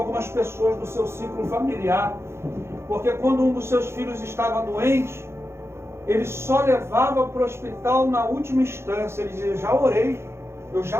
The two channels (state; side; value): late; left; 0.12 ms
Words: pessoas do seu ciclo familiar, porque quando um dos seus filhos estava doente, ele só levava para o hospital na última instância. Ele dizia: já orei, eu